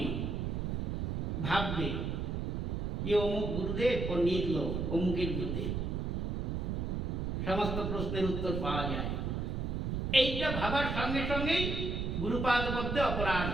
ভাববে যে অমুক গুরুদেব পণ্ডিত লোক, অমুকের গুরুদেব, সমস্ত প্রশ্নের উত্তর পাওয়া যায়। এইটা ভাবার সঙ্গে সঙ্গেই গুরুপাদ মধ্যে অপরাধ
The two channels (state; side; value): noise; right; rumble, 1 dB below the sound